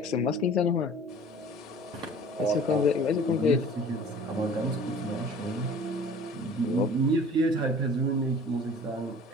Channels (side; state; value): both; normal; correlation 0.46